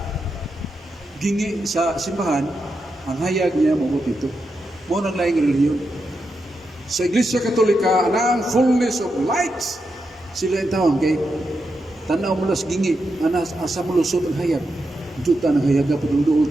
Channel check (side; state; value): both; normal; correlation 0.86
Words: gingi sa simbahan, ang hayag niya mabuti ito. Mo nang laing relihiyon. Sa Iglesia Katolika, ang fullness of light, sila yung tawag kay tanaw mo las gingi, asa mo lusot ang hayag. Duta ng hayag na pagduduol